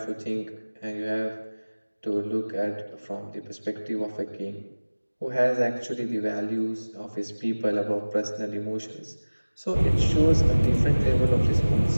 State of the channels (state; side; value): inverted; both; correlation -1.00